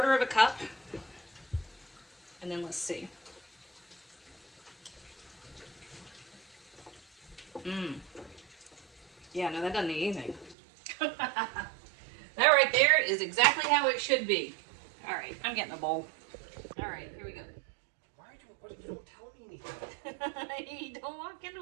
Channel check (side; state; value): left; drops out; at 10.6 s